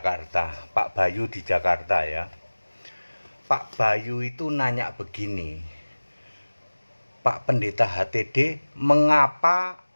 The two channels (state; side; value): inverted; both; correlation -1.00